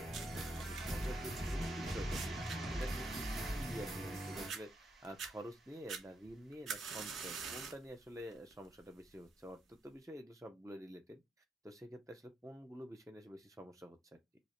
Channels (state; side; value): normal; both; correlation 0.81